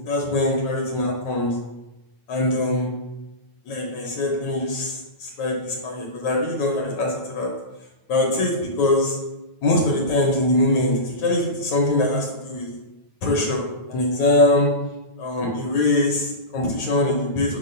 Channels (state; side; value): late; right; 9.1 ms